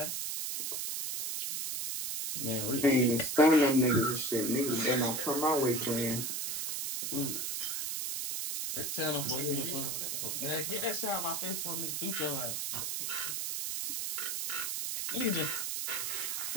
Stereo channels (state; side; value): noise; right; hiss, 2 dB below the sound